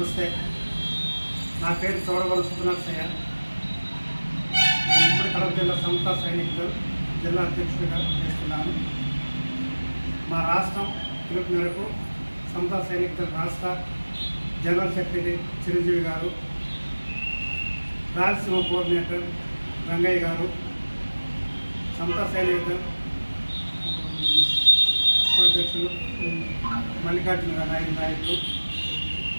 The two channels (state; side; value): inverted; both; correlation -1.00